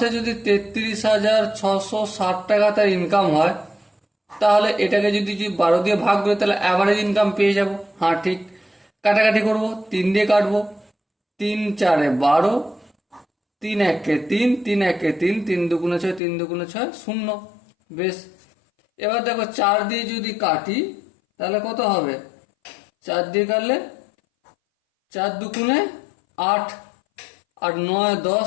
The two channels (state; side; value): drops out; right; at 16.2 s